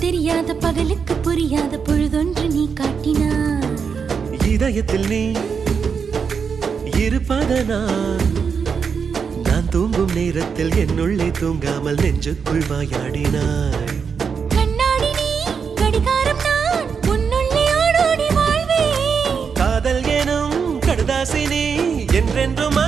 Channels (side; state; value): left; quieter; 6.1 dB